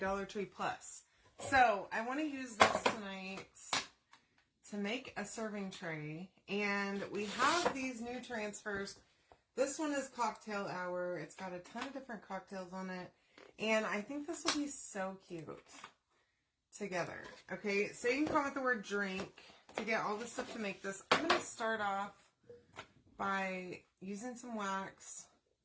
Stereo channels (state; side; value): identical; both; correlation 1.00